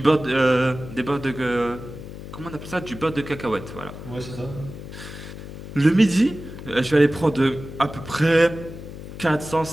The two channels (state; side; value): noise; left; hum, 12 dB below the sound